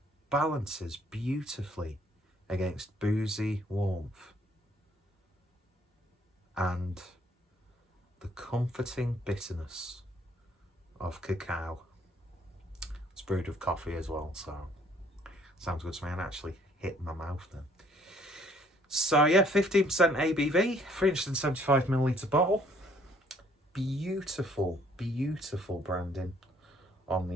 balances beautifully against boozy warmth and the comforting bitterness of cacao. It's brewed with coffee as well, so sounds good to me, and actually hit my mouth then. So yeah, 15% ABV, 375ml bottle. Beautiful, beautiful branding on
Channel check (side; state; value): both; normal; correlation 0.62